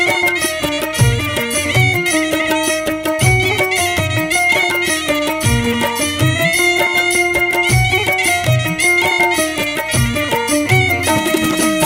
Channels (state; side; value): identical; both; correlation 1.00